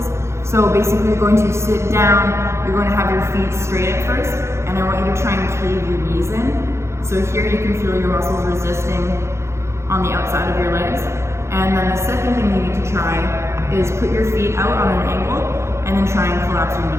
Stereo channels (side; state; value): left; late; 0.13 ms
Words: So basically, you're going to sit down, you're going to have your feet straight at first, and I want you to try and cave your knees in. So here you can feel your muscles resisting on the outside of your legs. And then the second thing you need to try is put your feet out on an angle, and then try and collapse your